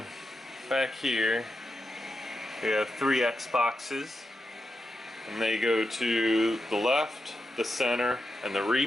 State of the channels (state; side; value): normal; both; correlation 0.89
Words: back here, we have 3 Xboxes. And they go to the left, the center, and the